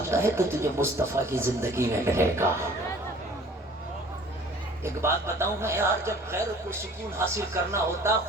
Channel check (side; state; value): both; normal; correlation 0.50